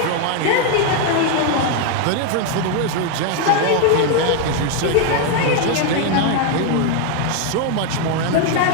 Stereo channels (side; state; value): both; different; correlation 0.01